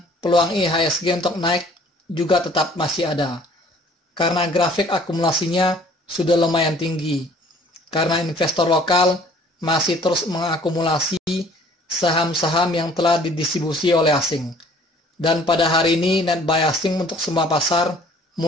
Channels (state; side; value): normal; both; correlation 0.54